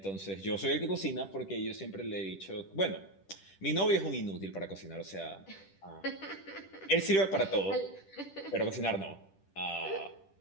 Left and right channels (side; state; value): right; late; 10 ms